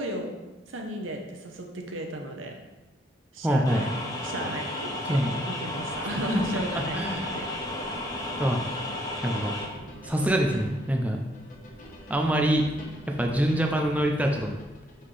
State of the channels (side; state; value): both; normal; correlation 0.69